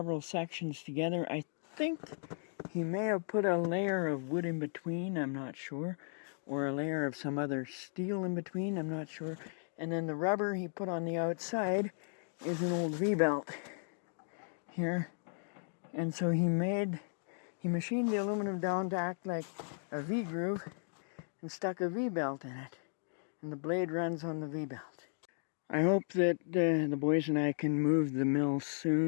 sections together. I think he may have put a layer of wood in between, I'm not sure, or a layer of some other steel in between, I'm not sure. And then the rubber he put on the outside is an old V-belt here. And so he machined the aluminum down to act like a V-groove and stuck a V-belt in it. And the blade runs on the V-belt. I hope that the boys and I can move the mill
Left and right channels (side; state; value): right; silent; digital silence